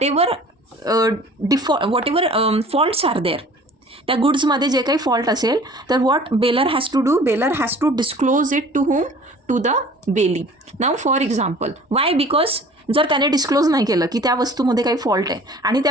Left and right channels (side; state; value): both; normal; correlation 0.48